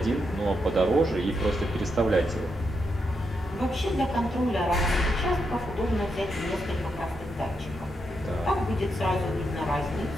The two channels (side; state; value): both; normal; correlation 0.82